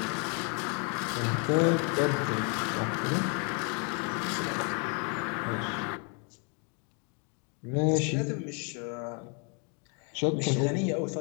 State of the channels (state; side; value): quieter; right; 36.9 dB